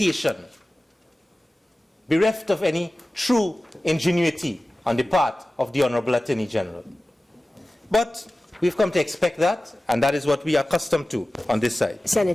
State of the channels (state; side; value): normal; both; correlation 0.96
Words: bereft of any true ingenuity on the part of the Honorable Attorney General. But we've come to expect that, and that is what we are accustomed to on this side.